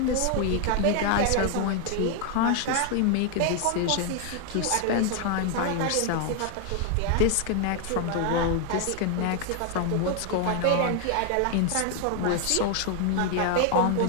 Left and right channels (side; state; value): both; different; correlation 0.00